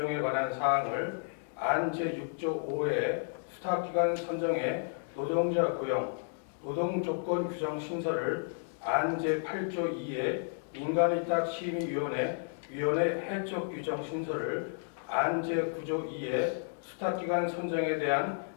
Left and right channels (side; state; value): right; silent; digital silence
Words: 관한 사항을, 안 제6조 5의 수탁기관 선정에 노동자 고용, 노동조건 규정 신설을, 안 제8조 2의 민간위탁 심의위원회 해적 규정 신설을, 안 제9조 2의 수탁기관 선정에 대한